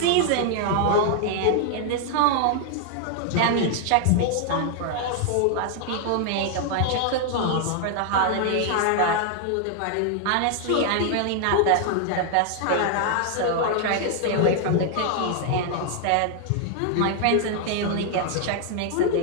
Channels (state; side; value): different; both; correlation 0.00